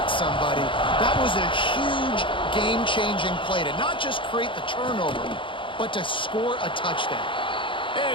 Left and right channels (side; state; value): right; late; 0.25 ms